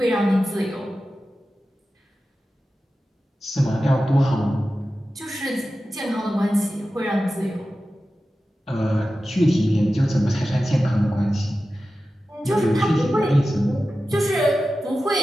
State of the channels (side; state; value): both; normal; correlation 0.94